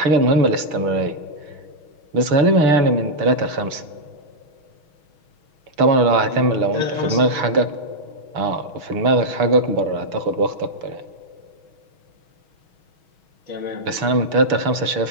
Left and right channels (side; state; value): left; late; 6.3 ms